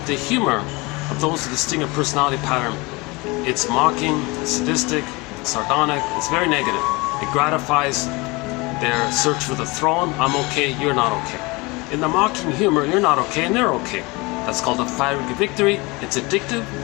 those with the stinger personality pattern, it's mocking, it's sadistic, it's sardonic, it's very negative. It gratifies their search for the throne. I'm okay, you're not okay. In the mocking humor, you're not okay and they're okay. That's called a fiery victory. It's addictive.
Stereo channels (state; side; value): quieter; right; 24.9 dB